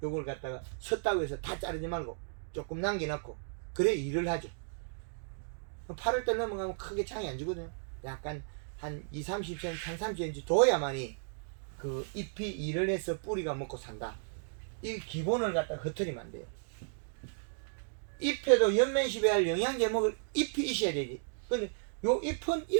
요걸 갖다가 섰다고 해서 다 자르지 말고 조금 남겨놓고 그래 일을 하죠. 8월달 넘어가면 크게 창이 안 주거든요. 약간 한 20-30cm, 한 30cm 둬야만이 그 잎이 일을 해서 뿌리가 먹고 산다. 이 기본을 갖다 흩어지면 안 돼요. 잎에도 연면시배 할 영양제 먹을 잎이 있어야 되지. 근데 요 잎은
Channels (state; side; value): silent; left; digital silence